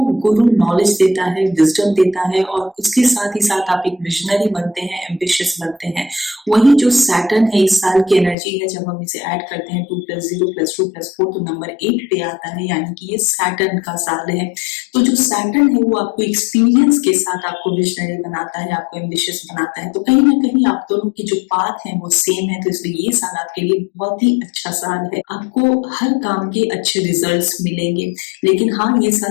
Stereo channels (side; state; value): right; drops out; at 8.3 s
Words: गुरु नॉलेज देता है, विजडम देता है और उसके साथ ही साथ आप एक विजनरी बनते हैं, एम्बिशियस बनते हैं। वही जो सैटर्न है इस साल की एनर्जी है, जब हम इसे ऐड करते हैं 2 + 0 + 2 + 4 तो नंबर 8 पे आता है, यानी कि ये सैटर्न का साल है। तो जो सैटर्न है वो आपको एक्सपीरियंस के साथ आपको विजनरी बनाता है, आपको एम्बिशियस बनाता है। तो कहीं ना कहीं आप दोनों की जो पाथ है वो सेम है, तो इसलिए ये साल आपके लिए बहुत ही अच्छा साल है। आपको हर काम के अच्छे रिजल्ट्स मिलेंगे। लेकिन हाँ, ये